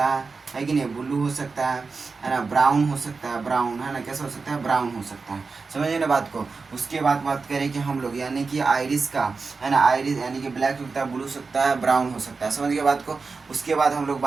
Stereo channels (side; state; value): left; quieter; 4.4 dB